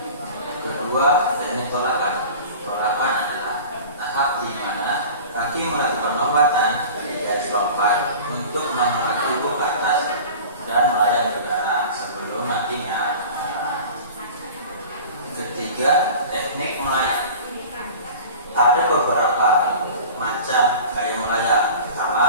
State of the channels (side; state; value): both; inverted; correlation -0.38